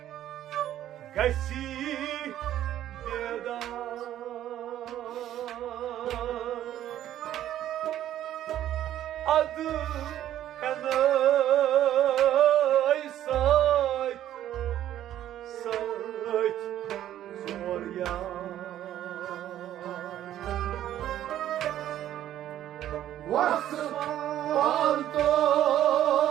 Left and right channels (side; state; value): left; quieter; 12.0 dB